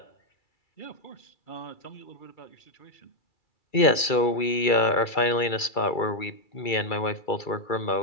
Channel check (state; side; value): late; right; 2.3 ms